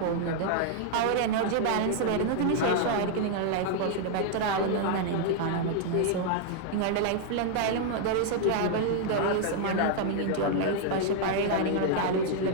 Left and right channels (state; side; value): different; both; correlation -0.01